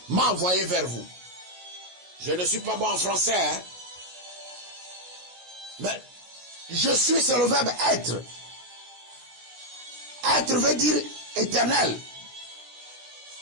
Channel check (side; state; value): left; late; 16 ms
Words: m'a envoyé vers vous. Je ne suis pas bon en français, hein? Mais je suis, c'est le verbe être. Être veut dire éternel.